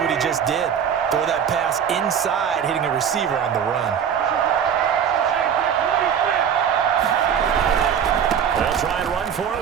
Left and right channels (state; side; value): quieter; left; 8.1 dB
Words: he just did. Throw that pass inside, hitting a receiver on the run. They'll try and run for it